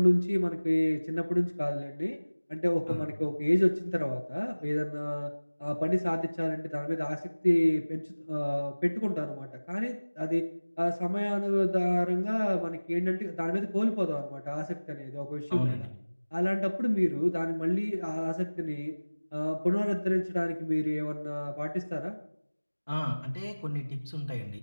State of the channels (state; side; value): inverted; both; correlation -1.00